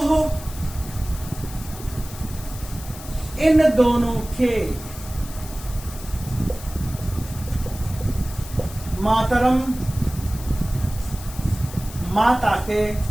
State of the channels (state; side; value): noise; left; hiss, 15 dB below the sound